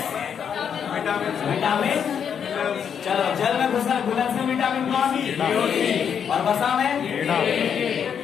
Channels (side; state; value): right; quieter; 7.7 dB